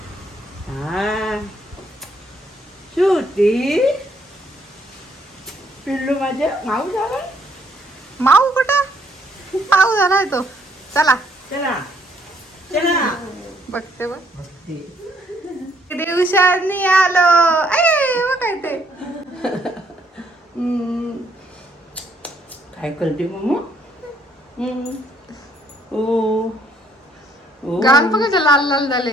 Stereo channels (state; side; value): normal; both; correlation 0.68